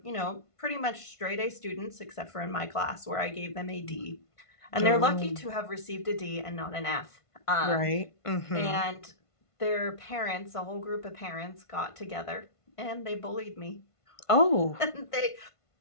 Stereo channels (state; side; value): late; right; 1.5 ms